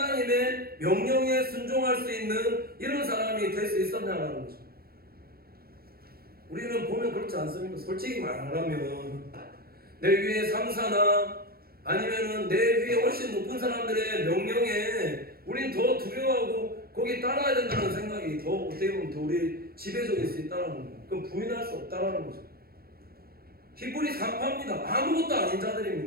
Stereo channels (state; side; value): late; left; 0.44 ms